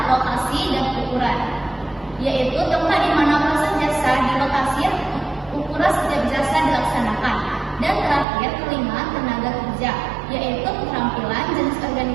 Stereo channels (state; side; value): drops out; left; at 8.2 s